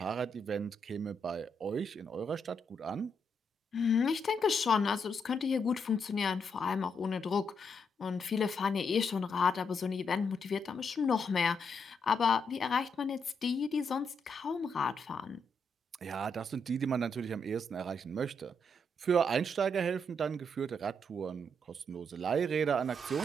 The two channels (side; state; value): both; normal; correlation 0.78